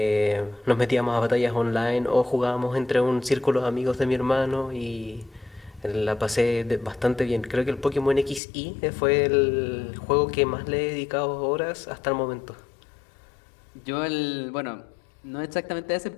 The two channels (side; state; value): right; drops out; at 8.4 s